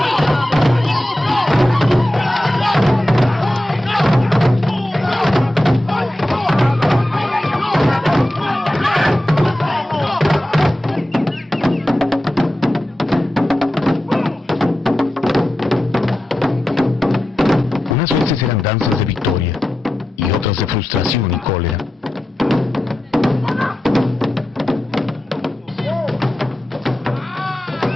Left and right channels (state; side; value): normal; both; correlation 0.91